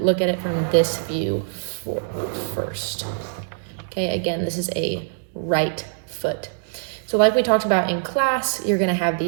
at it from this view first. Okay, again, this is a right foot. So like we talked about in class, you're gonna have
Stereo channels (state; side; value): silent; left; digital silence